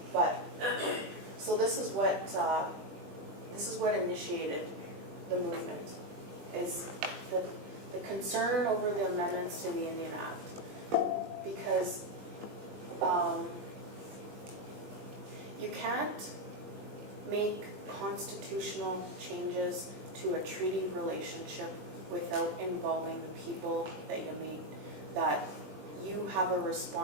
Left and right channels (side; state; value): left; late; 20 ms